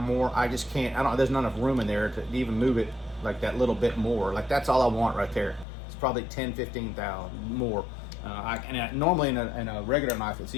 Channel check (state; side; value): drops out; right; at 5.7 s